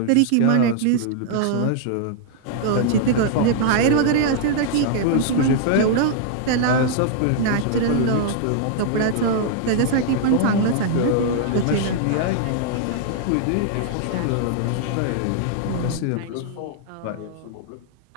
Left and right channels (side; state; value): both; different; correlation -0.01